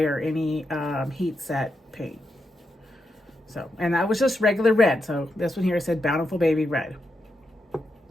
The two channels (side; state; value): both; normal; correlation 0.85